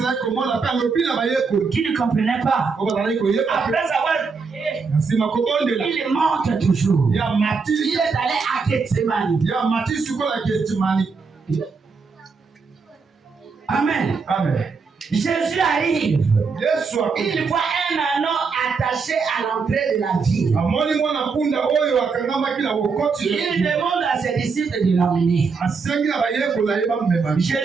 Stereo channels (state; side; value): quieter; left; 5.0 dB